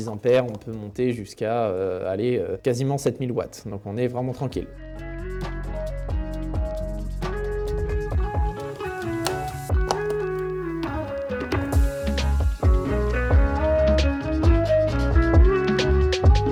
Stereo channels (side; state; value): both; identical; correlation 1.00